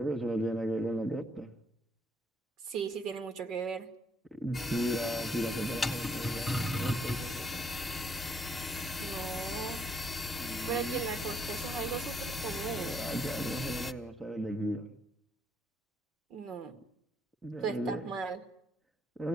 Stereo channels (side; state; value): both; normal; correlation 0.71